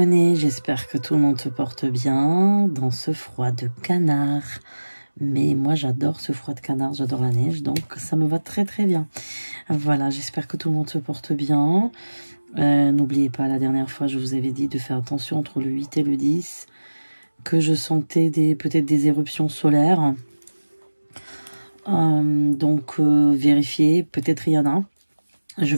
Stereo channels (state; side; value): inverted; both; correlation -1.00